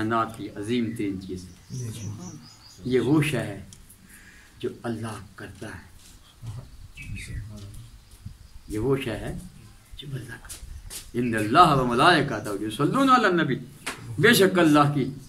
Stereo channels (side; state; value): both; identical; correlation 1.00